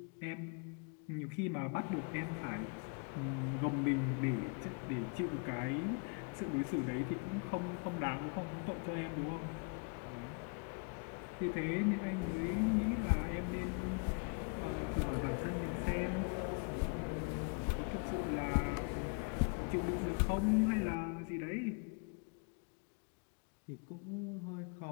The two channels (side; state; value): right; quieter; 36.7 dB